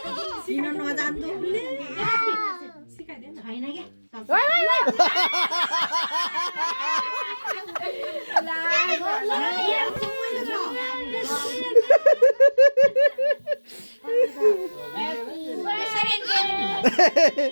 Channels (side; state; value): both; inverted; correlation -1.00